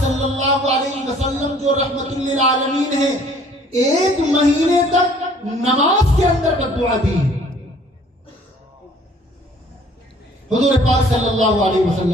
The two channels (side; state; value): both; normal; correlation 0.56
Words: اللہ علیہ وسلم جو رحمت للعالمین ہیں, 1 مہینے تک نماز کے اندر بددعا دی. حضور پاک صلی اللہ علیہ